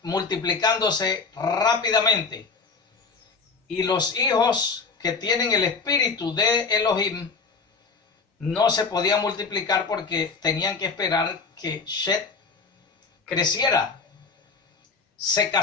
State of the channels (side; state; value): right; quieter; 4.7 dB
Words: multiplicándose rápidamente, y los hijos que tienen el espíritu de Elohim no se podían multiplicar porque tenían que esperar que Shet creciera, se